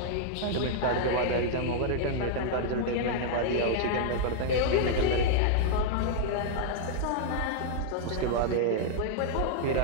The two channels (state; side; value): different; both; correlation -0.01